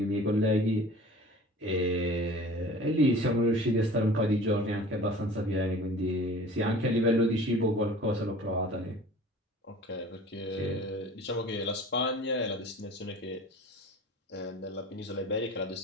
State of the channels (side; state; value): both; normal; correlation 0.43